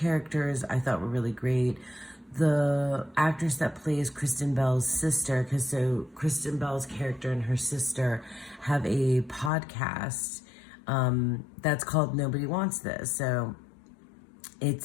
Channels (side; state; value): right; drops out; at 9.5 s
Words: I thought were really great. The actress that plays Kristen Bell's sister, so Kristen Bell's character and her sister have a podcast that's called Nobody Wants This. So